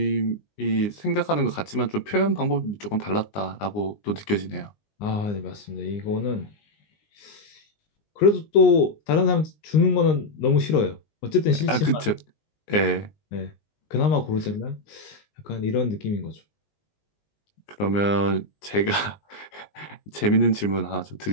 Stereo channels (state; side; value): late; right; 19 ms